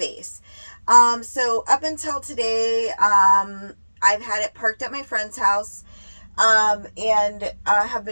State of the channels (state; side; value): inverted; both; correlation -1.00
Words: So up until today, I've had it parked at my friend's house, and have